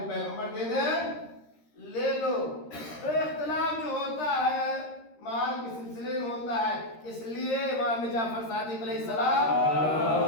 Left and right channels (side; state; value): right; late; 13 ms